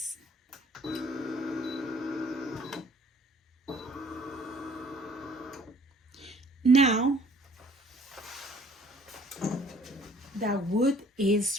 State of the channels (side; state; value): both; normal; correlation 0.56